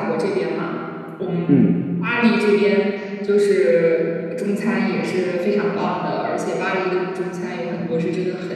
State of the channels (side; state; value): both; identical; correlation 1.00